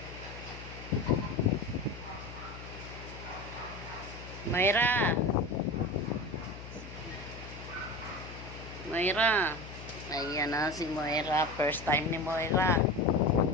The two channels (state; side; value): noise; left; hum, 13 dB below the sound